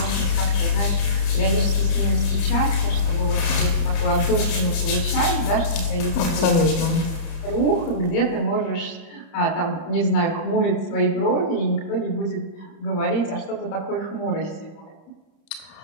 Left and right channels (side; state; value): right; late; 30 ms